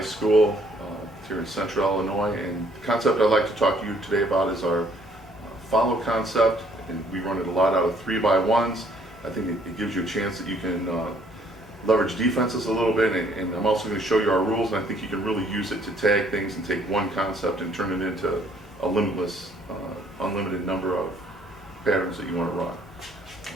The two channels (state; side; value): normal; both; correlation 0.63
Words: here in Central Illinois, and the concept I'd like to talk to you today about is our follow concept, and we run it a lot out of 3x1s. I think it gives you a chance that you can leverage defenses a little bit, and I'm also going to show you our rules, and I think you can really use it to tag things and take one concept and turn it into a limitless, unlimited number of patterns that you want to run.